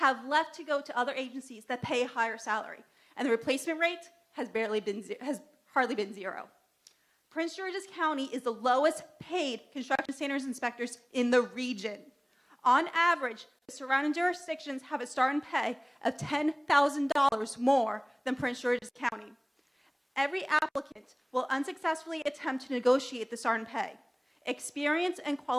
left to go to other agencies that pay a higher salary, and the replacement rate has hardly been zero. Prince George's County is the lowest paid construction standards inspectors in the region. On average, the surrounding jurisdictions have a starting pay of $10,000 more than Prince George's County. Every applicant will unsuccessfully attempt to negotiate the starting pay. Experienced and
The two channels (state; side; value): identical; both; correlation 1.00